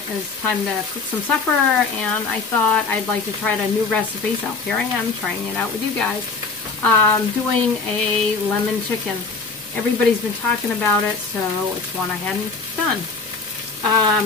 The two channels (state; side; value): quieter; right; 4.2 dB